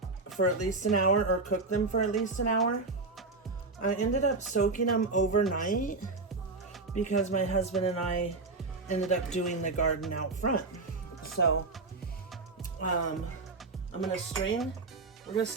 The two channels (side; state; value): left; quieter; 3.7 dB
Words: for at least an hour or cook them for at least an hour. I ended up soaking them overnight because my husband and I ended up doing the garden out front. So I'm gonna strain. We're gonna